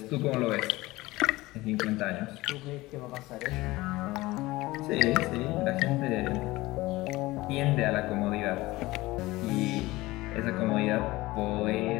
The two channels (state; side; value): quieter; right; 19.6 dB